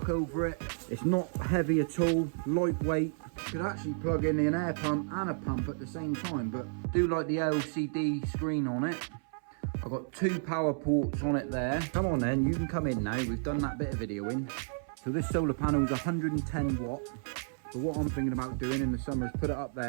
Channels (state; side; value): silent; left; 57 dB below the other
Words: over it, it's not heavy at all, lightweight. You could actually plug in an air pump and a pump at the same time, but I do like the LCD screen on it. I've got 2 power ports on it there. Come on then, you can come in now. We've done that bit of videoing. So this solar panel is 110 watt. So what I'm thinking about doing in the summer is put it up